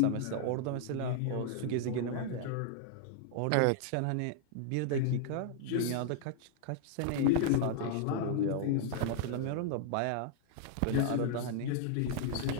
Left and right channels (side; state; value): both; different; correlation -0.01